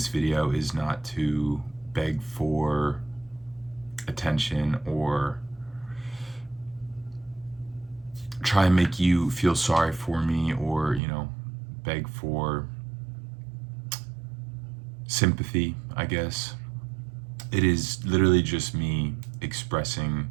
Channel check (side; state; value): left; drops out; at 11.0 s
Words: video is not to beg for attention or try and make you feel sorry for me or, beg for sympathy, I guess. It is literally just me expressing